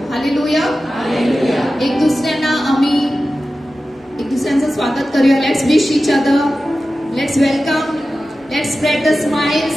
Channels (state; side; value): normal; both; correlation 0.94